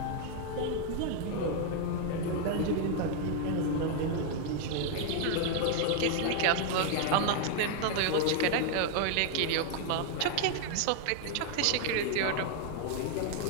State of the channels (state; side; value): different; both; correlation 0.00